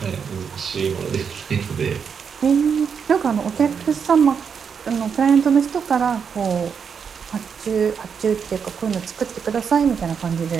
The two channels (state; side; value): quieter; left; 6.7 dB